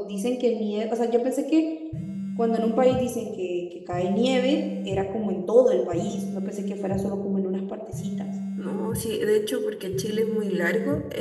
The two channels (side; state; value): both; identical; correlation 1.00